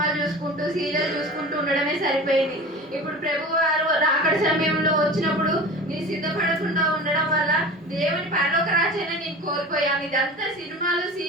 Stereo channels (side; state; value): both; normal; correlation 0.35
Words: చూసుకుంటూ సీరియల్ చూసుకుంటూ ఉండడమే సరిపోయింది. ఇప్పుడు ప్రభు వారు రాకడ సమయంలో వచ్చినప్పుడు నేను సిద్ధపడకుండా ఉండడం వల్ల దేవుని పరలోక రాజ్యాన్ని నేను కోల్పోయాను. ఇదంతా సినిమాలు